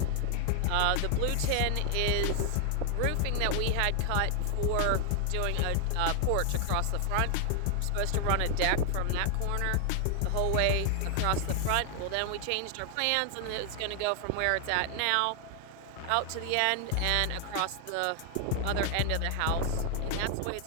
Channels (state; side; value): different; both; correlation 0.00